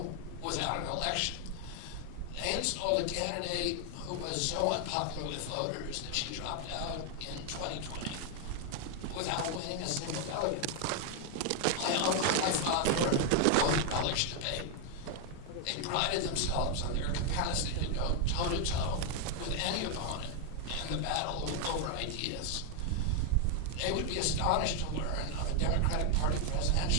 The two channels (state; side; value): different; both; correlation 0.00